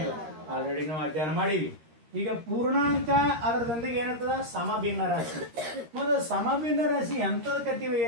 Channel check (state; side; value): late; left; 13 ms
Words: ಆಲ್ರೆಡಿ ನಾವು ಅಧ್ಯಯನ ಮಾಡೀವಿ. ಈಗ ಪೂರ್ಣಾಂಕ ಅದರದೊಂದಿಗೆ ಏನಿರ್ತದ? ಸಮಭಿನ್ನ ರಾಶಿ. ಮೊದಲು ಸಮಭಿನ್ನ ರಾಶಿ ಎಂತದ ಕರಿತೀವಿ